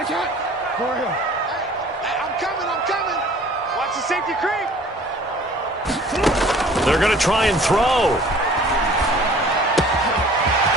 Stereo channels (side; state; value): both; normal; correlation 0.50